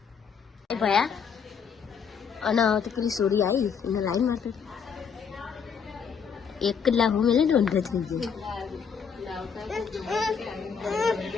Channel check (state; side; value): quieter; right; 6.6 dB